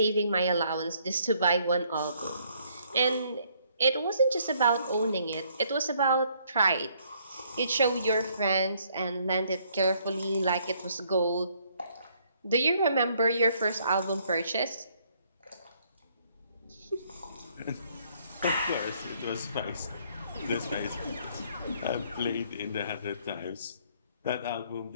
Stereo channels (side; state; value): both; inverted; correlation -0.67